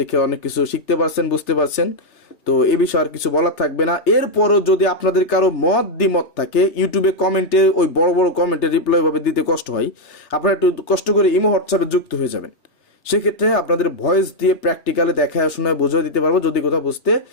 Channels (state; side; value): late; right; 3.3 ms